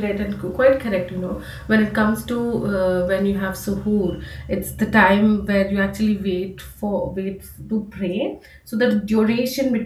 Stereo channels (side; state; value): both; identical; correlation 1.00